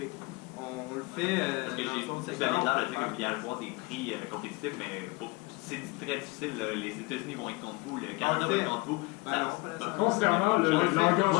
On le fait parce que vous avez l'air de dire qu'il y a avoir des prix compétitifs, mais c'est très difficile. Les États-Unis vont être contre vous, le Canada va être contre vous. Concernant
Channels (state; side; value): quieter; right; 25.0 dB